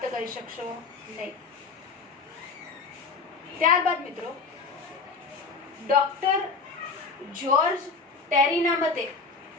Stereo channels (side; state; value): right; quieter; 4.4 dB